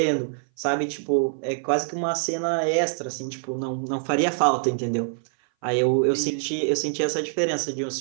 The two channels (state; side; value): silent; left; 58 dB below the other